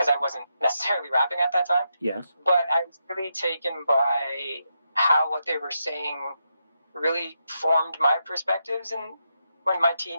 I wasn't necessarily rapping at that time. Yes. But I was really taken by how what they were saying really formed my perspectives in my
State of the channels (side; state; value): both; inverted; correlation -0.84